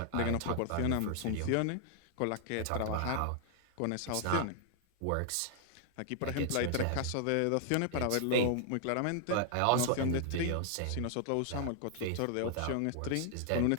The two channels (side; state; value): both; different; correlation 0.00